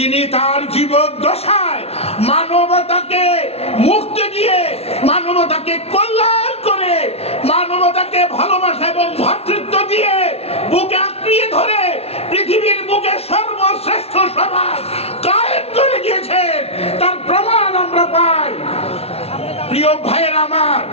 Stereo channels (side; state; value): right; late; 0.30 ms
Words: তার জীবদ্দশায় মানবতাকে মুক্তি দিয়ে, মানবতাকে কল্যাণ করে, মানবতাকে ভালোবাসা এবং ভ্রাতৃত্ব দিয়ে বুকে আঁকড়িয়ে ধরে পৃথিবীর বুকে সর্বশ্রেষ্ঠ সমাজ কায়েম করে গিয়েছেন। তার প্রমাণ আমরা পাই। প্রিয় ভাইয়ের আমার,